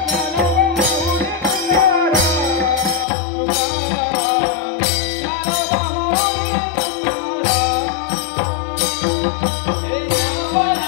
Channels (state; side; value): drops out; right; at 3.1 s